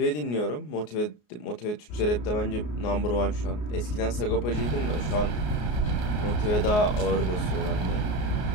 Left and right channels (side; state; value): right; late; 33 ms